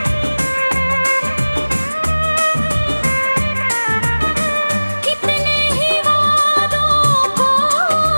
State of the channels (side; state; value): both; inverted; correlation -1.00